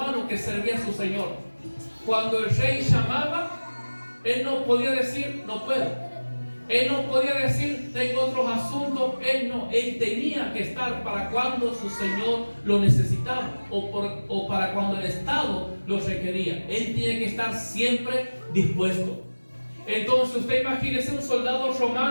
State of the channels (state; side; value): inverted; both; correlation -1.00